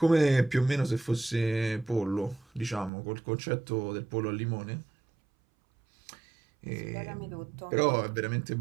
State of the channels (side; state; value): left; drops out; at 2.9 s